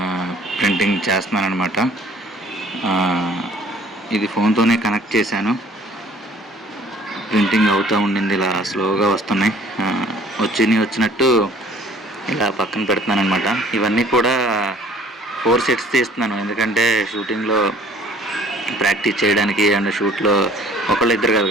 ప్రింటింగ్ చేస్తున్నాను అనమాట. ఇది ఫోన్తోనే కనెక్ట్ చేశాను. ప్రింటింగ్ అవుతూ ఉండింది, ఇలా స్లోగా వస్తున్నాయి. వచ్చినట్టు ఇలా పక్కన పెడుతున్నాను అనమాట. ఇవన్నీ కూడా 4 సెట్స్ తీస్తున్నాను, ఎందుకంటే షూటింగ్లో ప్రాక్టీస్ చేయడానికి అండ్ షూట్లో ఒకళ్ళు ఇద్దరు కాదు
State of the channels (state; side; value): normal; both; correlation 0.53